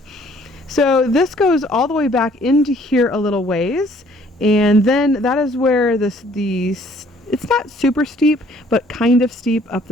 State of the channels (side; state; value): both; normal; correlation 0.59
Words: So this goes all the way back into here a little ways, and then that is where it's not super steep, but kind of steep up